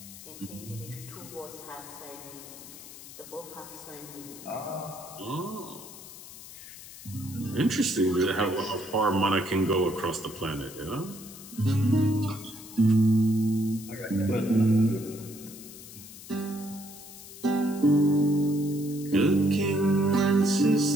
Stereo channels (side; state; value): left; noise; hiss, 16 dB below the sound